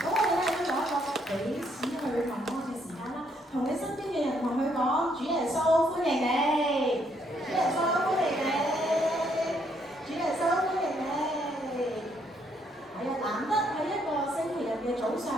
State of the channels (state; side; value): normal; both; correlation 0.71